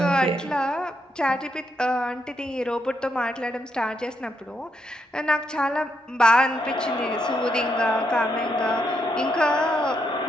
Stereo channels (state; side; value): normal; both; correlation 0.79